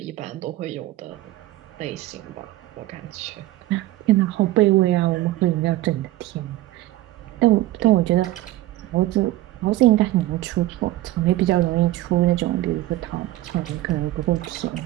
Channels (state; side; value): quieter; left; 16.2 dB